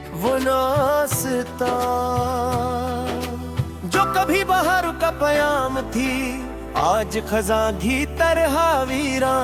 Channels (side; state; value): both; identical; correlation 1.00